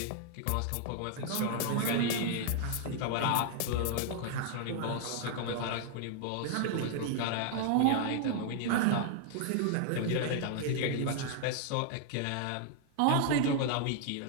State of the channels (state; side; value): different; both; correlation 0.00